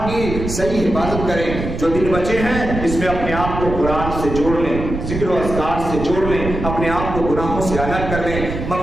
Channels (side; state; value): right; noise; rumble, 6 dB below the sound